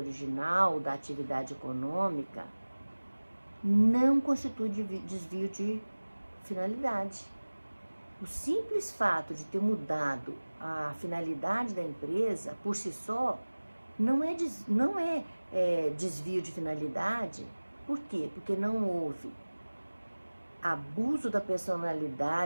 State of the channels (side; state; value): both; inverted; correlation -1.00